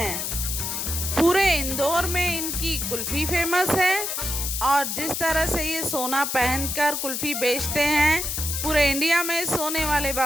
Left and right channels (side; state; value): left; noise; hiss, 2 dB below the sound